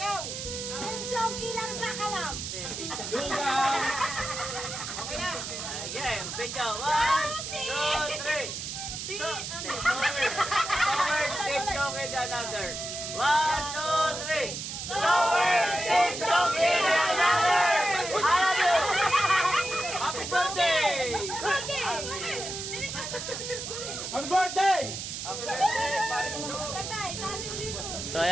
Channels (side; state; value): right; noise; hiss, 6 dB below the sound